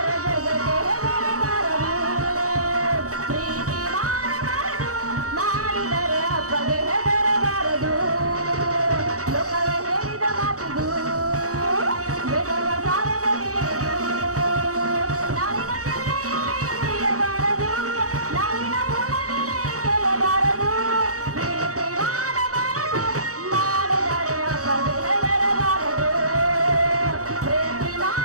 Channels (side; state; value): left; late; 0.66 ms